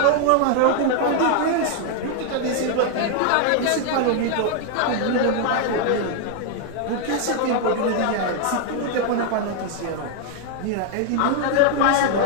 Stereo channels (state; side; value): different; both; correlation 0.00